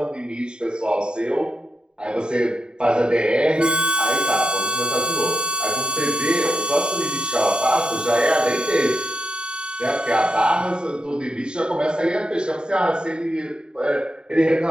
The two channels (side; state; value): left; late; 0.049 ms